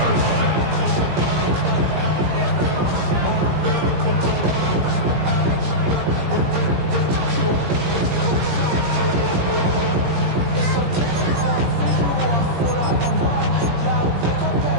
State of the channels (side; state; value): left; late; 17 ms